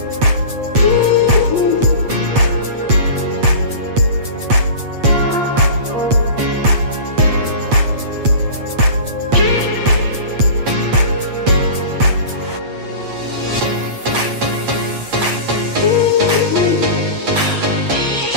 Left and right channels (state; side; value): late; left; 8.4 ms